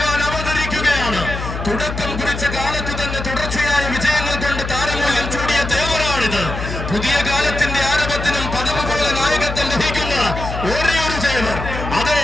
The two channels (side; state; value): left; noise; hum, 6 dB below the sound